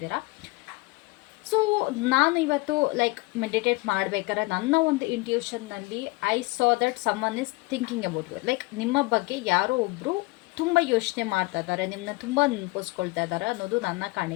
ಸೊ ನಾನು ಇವತ್ತು ಮೆಡಿಟೇಟ್ ಮಾಡಬೇಕಾದ್ರೆ ನನ್ನ ಒಂದು ಇಂಟ್ಯೂಷನ್ನಲ್ಲಿ I saw that someone is thinking about you. ನಿಮ್ಮ ಬಗ್ಗೆ ಯಾರೋ ಒಬ್ಬರು ತುಂಬ ಯೋಚನೆ ಮಾಡ್ತಾ ಇದ್ದಾರೆ, ನಿಮ್ಮನ್ನ ತುಂಬ ನೆನಪಿಸ್ಕೊಳ್ತಾ ಇದ್ದಾರೆ ಅನ್ನೋದು ನನ್ನ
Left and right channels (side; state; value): right; quieter; 23.7 dB